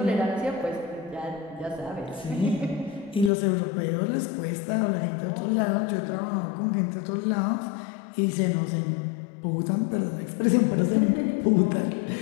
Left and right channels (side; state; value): right; drops out; at 3.3 s